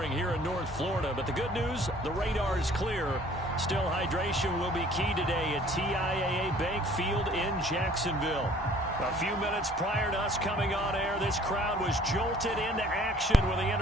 here in North Florida. But the good news, the radar is clear. Still, hydration will be key today at TIAA Bank Field in Jacksonville. A few minutes prior to us coming on air, this crowd was jolted into action with the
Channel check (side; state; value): both; normal; correlation 0.54